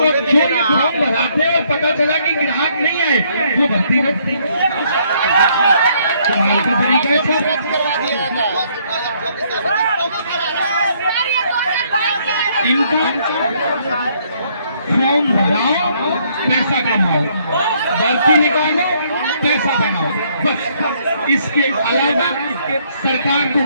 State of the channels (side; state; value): both; inverted; correlation -0.68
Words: जो फॉर्म भराते और पता चला कि ग्राहक नहीं आए, वो भर्ती रखती कमाल का तरीका है सर। इनका फॉर्म भराओ, पैसा कमाओ, भर्ती निकालो, पैसा बनाओ, बस। इसके अलावा सरकार को